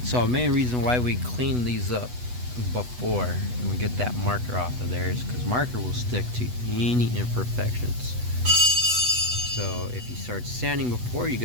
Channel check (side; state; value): left; late; 8.1 ms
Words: so the main reason why we clean these up before and we get that marker off of there is because marker will stick to any imperfections. So if you start sanding before you